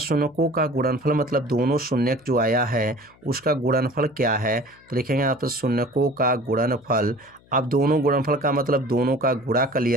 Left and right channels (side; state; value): left; noise; hum, 29 dB below the sound